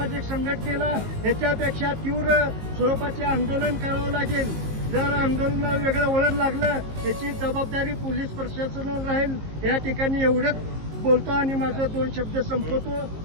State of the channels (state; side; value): late; left; 19 ms